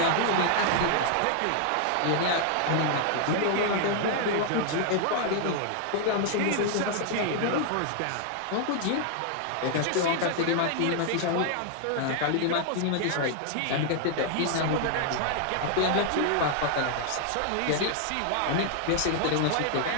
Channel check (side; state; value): both; different; correlation 0.00